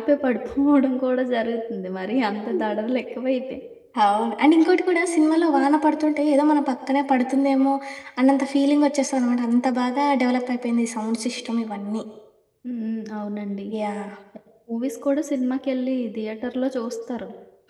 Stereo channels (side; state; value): both; identical; correlation 1.00